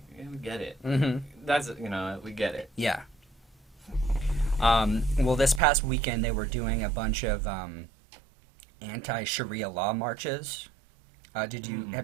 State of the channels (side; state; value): left; drops out; at 5.6 s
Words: we get it. Mm-hmm. That's, you know, we get it. Yeah. Well, this past weekend they were doing a bunch of anti-Sharia law marches. Have